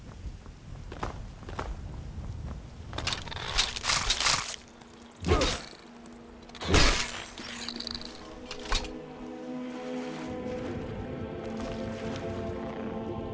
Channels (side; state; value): both; identical; correlation 1.00